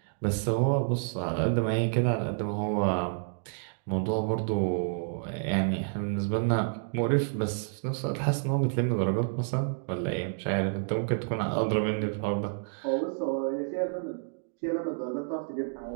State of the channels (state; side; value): silent; left; digital silence